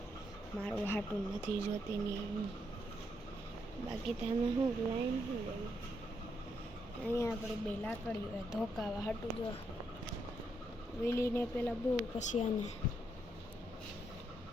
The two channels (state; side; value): normal; both; correlation 0.78